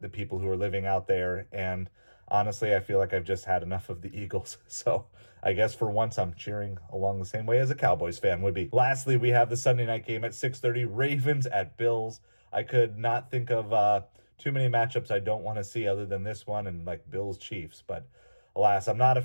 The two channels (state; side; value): inverted; both; correlation -1.00